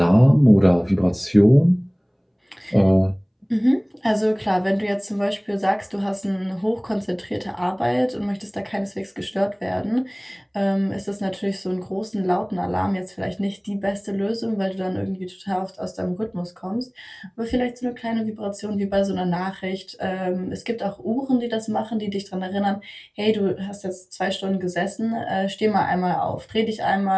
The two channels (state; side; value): identical; both; correlation 1.00